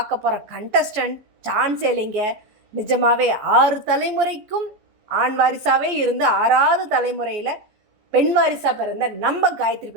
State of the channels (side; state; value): left; late; 14 ms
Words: போகிற கண்டஸ்டன்ட் சான்ஸே இல்லைங்க. நிஜமாகவே 6 தலைமுறைக்கும் ஆண் வாரிசாகவே இருந்து 6வது தலைமுறையில் பெண் வாரிசாக பிறந்த நம்ம காயத்ரி